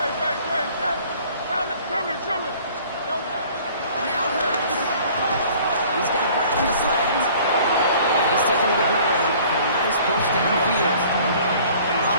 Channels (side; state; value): both; inverted; correlation -0.52